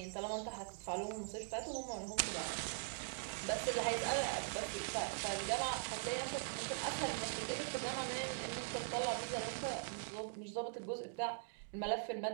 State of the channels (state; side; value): silent; left; digital silence